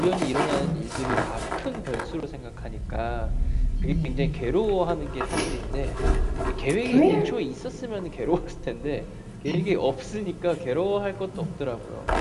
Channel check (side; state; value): both; identical; correlation 1.00